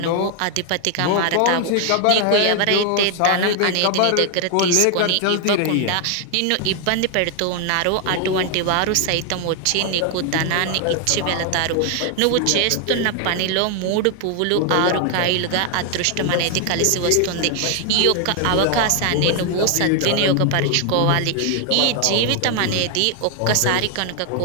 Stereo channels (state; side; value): different; both; correlation 0.00